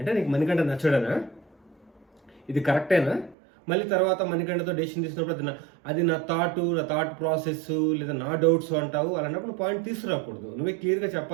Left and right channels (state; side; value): drops out; left; at 3.4 s